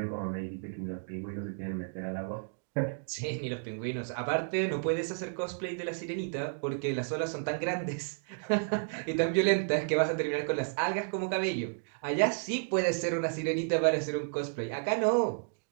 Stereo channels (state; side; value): silent; left; digital silence